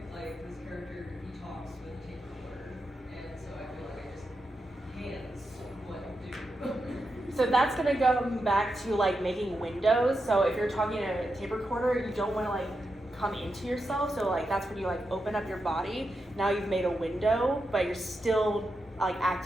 Like this character, he talks with a tape recorder, and so I feel like I just hands what do. So that's gonna go back to like making windows. So if you're talking a tape recorder, you don't want to like come into yourself. So like that's when you like open up your body. Now you've made a window, but you're still like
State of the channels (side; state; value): both; normal; correlation 0.87